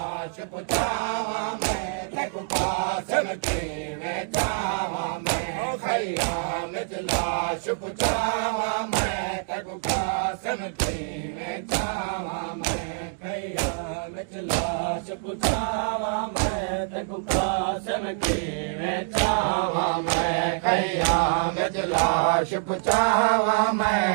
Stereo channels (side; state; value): left; silent; digital silence